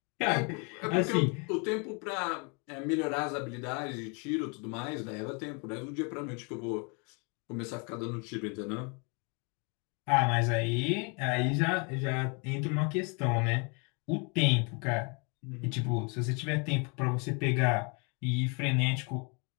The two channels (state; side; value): quieter; right; 33.7 dB